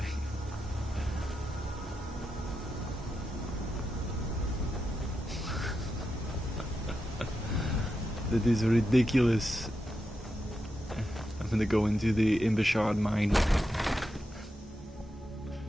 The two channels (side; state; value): both; normal; correlation 0.87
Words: That is ridiculous. I'm gonna go into the Imbashard mine.